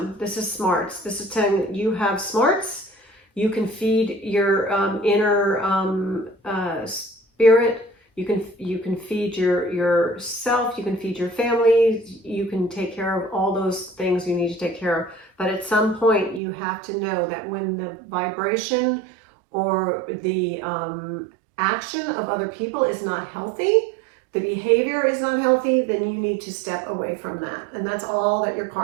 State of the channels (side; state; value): left; drops out; at 16.4 s